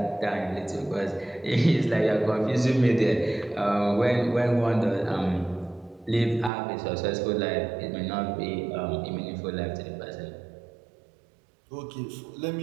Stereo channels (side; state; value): left; drops out; at 6.5 s